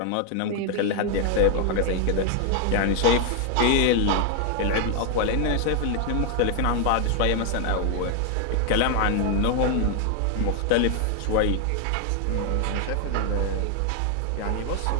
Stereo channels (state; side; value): different; both; correlation 0.00